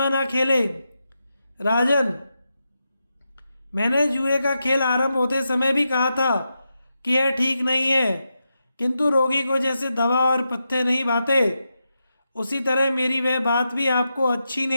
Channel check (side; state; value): both; inverted; correlation -0.87